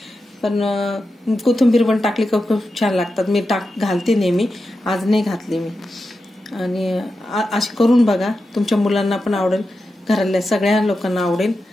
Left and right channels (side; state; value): both; normal; correlation 0.90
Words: पण कोथिंबीर पण टाकली का खूप छान लागतात। मी घालते नेहमी, आज नाही घातली मी। आणि अशी करून बघा, तुमच्या मुलांना पण आवडेल, घरातल्या सगळ्या लोकांना आवडेल।